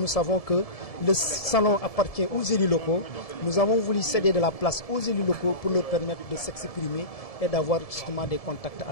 savons que le salon appartient aux élus locaux. Nous avons voulu céder de la place aux élus locaux pour leur permettre de s'exprimer et d'avoir justement des contacts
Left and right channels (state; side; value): late; right; 1.7 ms